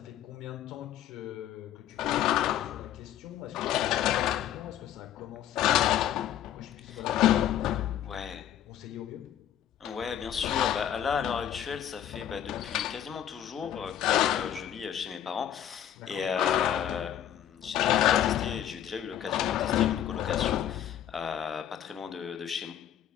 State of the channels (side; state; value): right; quieter; 10.8 dB